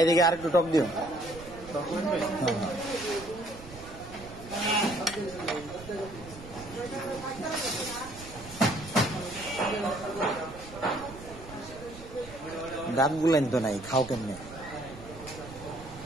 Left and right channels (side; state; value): right; noise; rumble, 15 dB below the sound